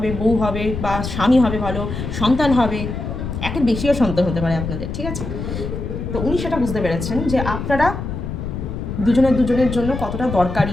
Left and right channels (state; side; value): noise; left; rumble, 5 dB below the sound